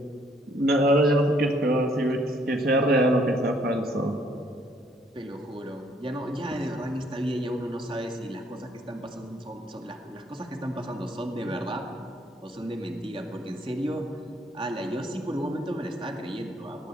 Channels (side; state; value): both; normal; correlation 0.66